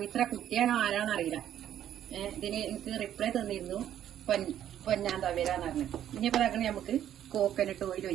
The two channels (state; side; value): quieter; left; 10.9 dB